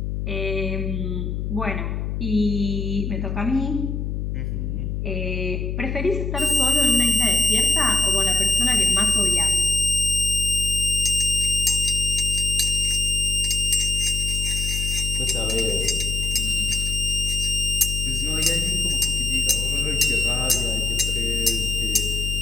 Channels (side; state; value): left; noise; hum, 3 dB below the sound